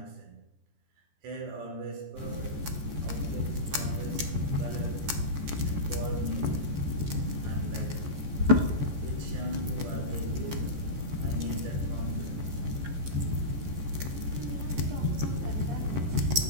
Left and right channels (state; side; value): late; left; 14 ms